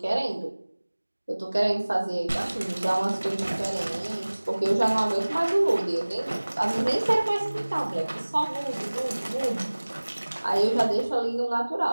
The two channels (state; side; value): inverted; both; correlation -1.00